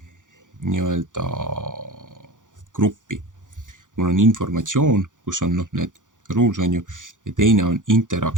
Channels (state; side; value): late; left; 0.87 ms